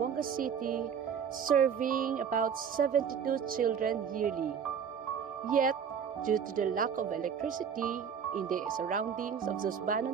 City, serving about 72 children yearly. Yet, due to the lack of electricity in the surroundings of the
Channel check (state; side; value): quieter; left; 7.4 dB